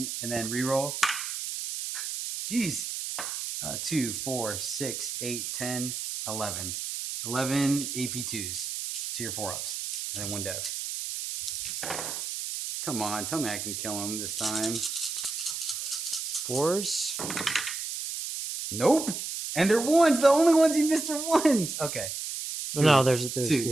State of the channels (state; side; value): noise; right; hiss, 5 dB below the sound